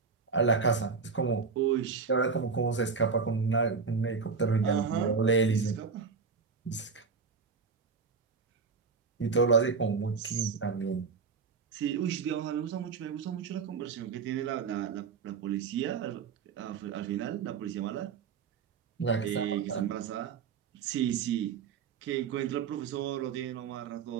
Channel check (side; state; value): left; quieter; 5.3 dB